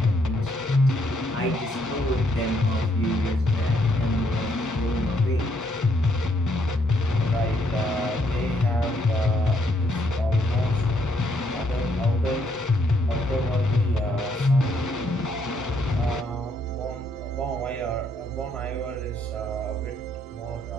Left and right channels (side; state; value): both; normal; correlation 0.72